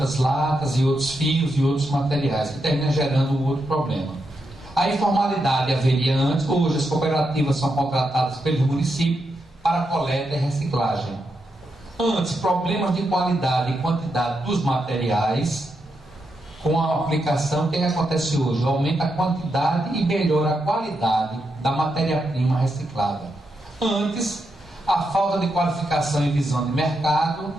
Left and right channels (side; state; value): both; normal; correlation 0.84